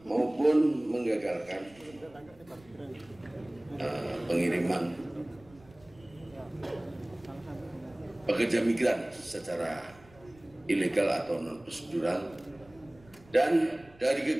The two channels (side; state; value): right; noise; rumble, 26 dB below the sound